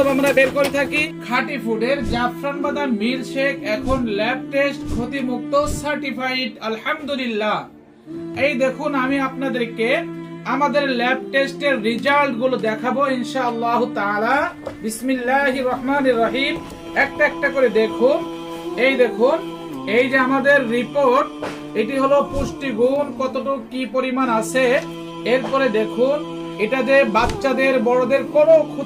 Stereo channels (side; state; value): both; identical; correlation 1.00